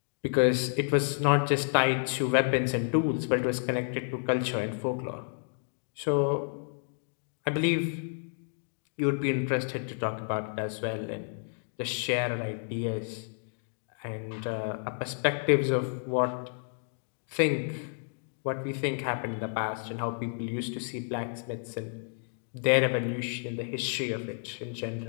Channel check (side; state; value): right; silent; digital silence